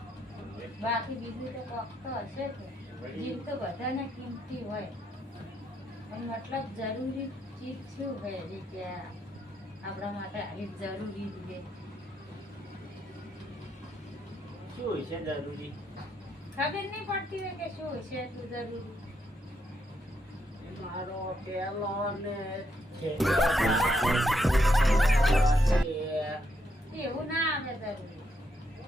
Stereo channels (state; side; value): normal; both; correlation 0.78